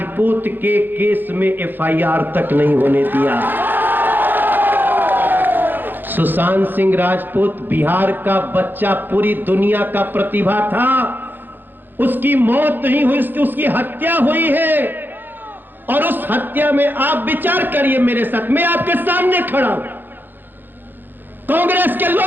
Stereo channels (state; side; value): late; left; 0.092 ms